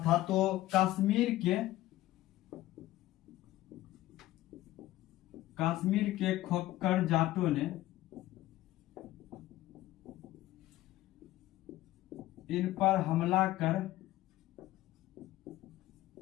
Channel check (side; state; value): right; quieter; 15.8 dB